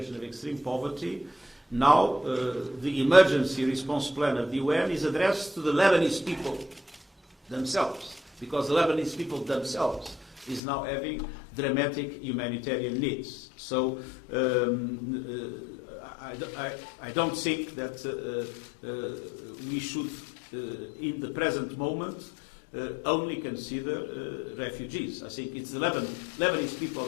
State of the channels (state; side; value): drops out; right; at 10.6 s